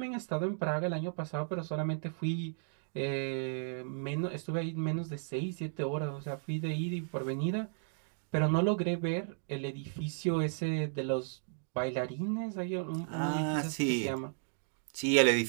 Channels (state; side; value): silent; left; digital silence